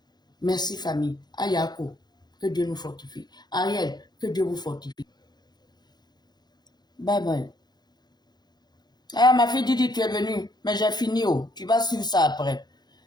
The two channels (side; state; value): right; late; 0.20 ms